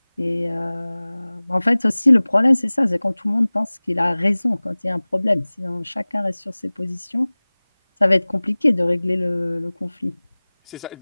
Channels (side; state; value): both; inverted; correlation -1.00